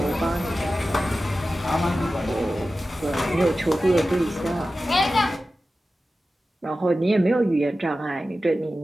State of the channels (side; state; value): both; normal; correlation 0.94